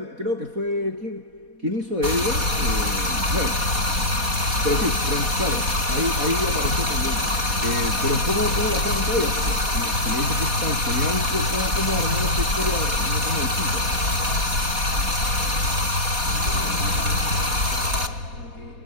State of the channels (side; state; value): left; late; 4.1 ms